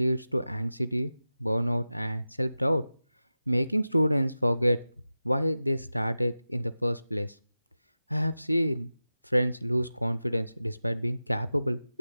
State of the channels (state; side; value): inverted; both; correlation -0.95